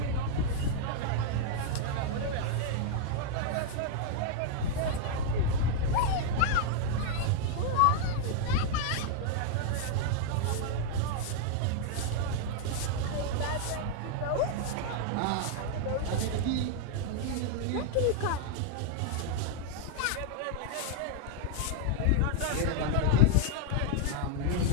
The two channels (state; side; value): different; both; correlation 0.00